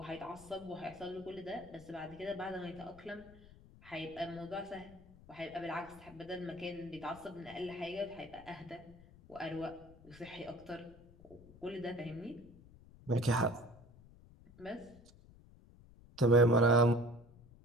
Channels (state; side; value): noise; left; rumble, 22 dB below the sound